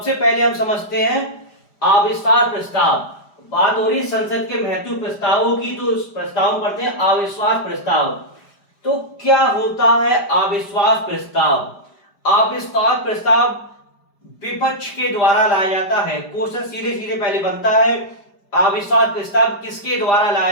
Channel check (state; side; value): late; right; 5.0 ms